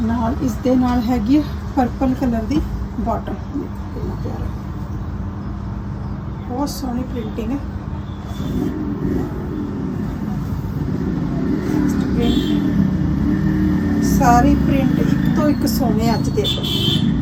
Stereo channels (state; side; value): identical; both; correlation 1.00